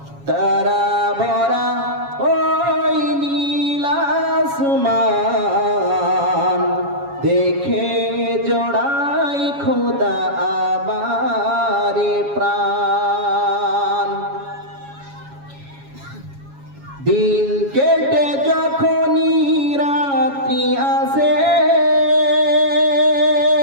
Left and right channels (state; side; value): late; left; 7.2 ms